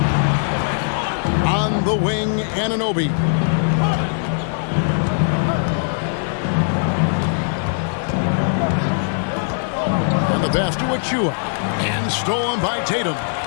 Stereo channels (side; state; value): right; silent; 66 dB below the other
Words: On the wing, Anunoby. And the pass to Achua. And stolen by Tatum.